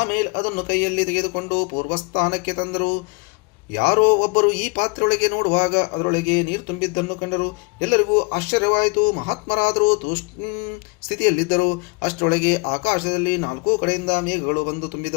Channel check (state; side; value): quieter; right; 30.5 dB